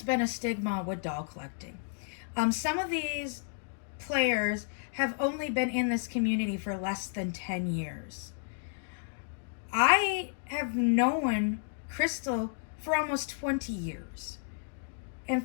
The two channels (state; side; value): silent; right; digital silence